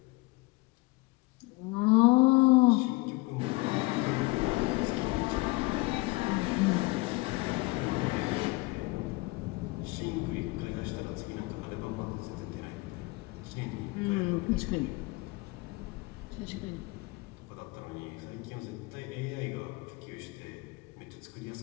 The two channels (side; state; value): right; quieter; 24.2 dB